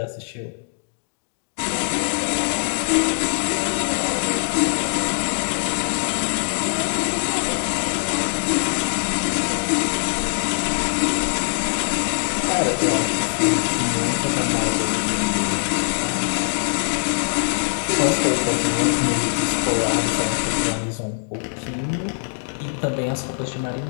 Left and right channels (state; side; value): silent; right; digital silence